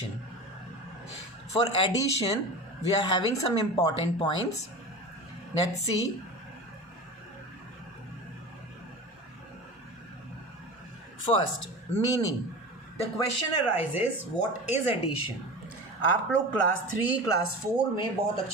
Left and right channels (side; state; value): both; normal; correlation 0.31